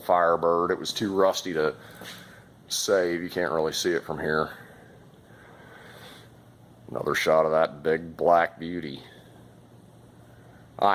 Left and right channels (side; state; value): both; identical; correlation 1.00